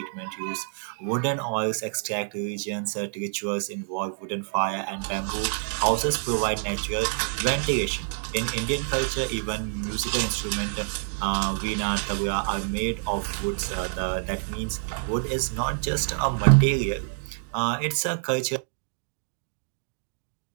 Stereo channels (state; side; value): silent; left; digital silence